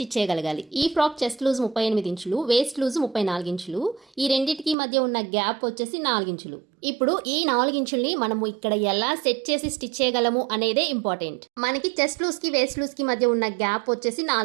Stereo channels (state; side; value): drops out; left; at 4.8 s